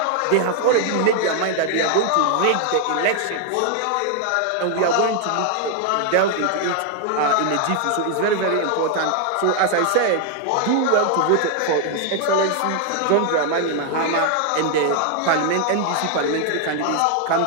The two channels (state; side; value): different; both; correlation 0.00